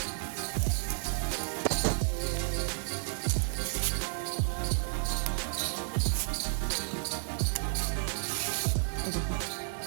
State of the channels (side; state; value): left; silent; digital silence